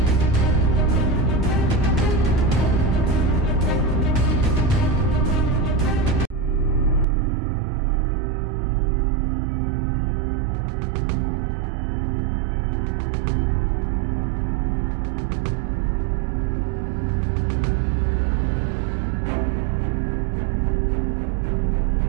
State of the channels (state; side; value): drops out; left; at 7.1 s